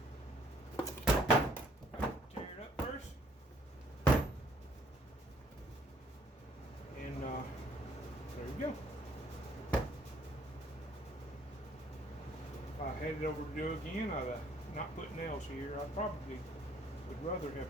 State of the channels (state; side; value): normal; both; correlation 0.63